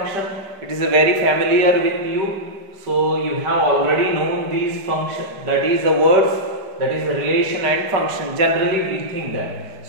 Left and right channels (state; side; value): late; left; 5.2 ms